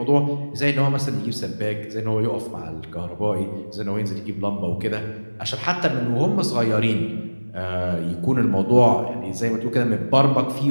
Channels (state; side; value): inverted; both; correlation -1.00